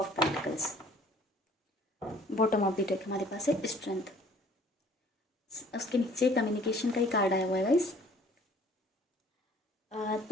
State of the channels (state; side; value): normal; both; correlation 0.55